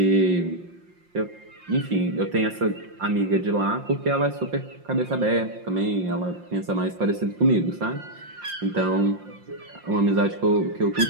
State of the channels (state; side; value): late; left; 5.7 ms